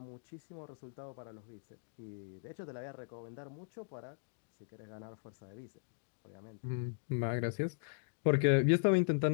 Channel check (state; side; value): silent; right; digital silence